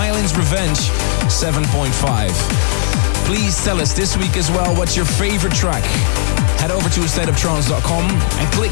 Revenge, 7.5. Please tell us this week as well what's your favorite track. Head over to stateoftrance.com and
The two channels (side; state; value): right; silent; digital silence